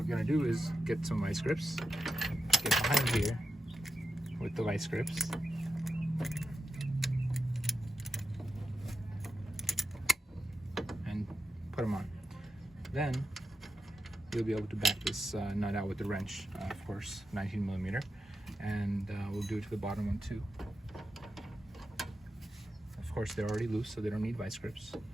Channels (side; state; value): both; normal; correlation 0.86